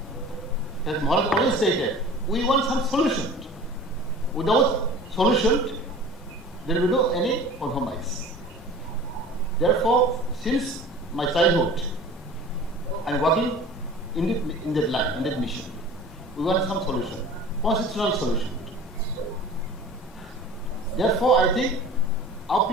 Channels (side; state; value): both; normal; correlation 0.41